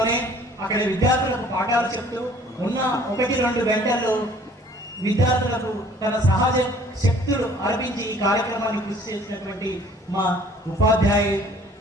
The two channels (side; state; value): both; normal; correlation 0.54